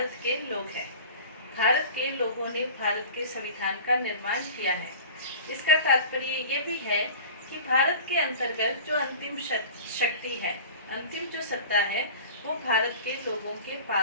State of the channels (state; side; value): inverted; both; correlation -0.40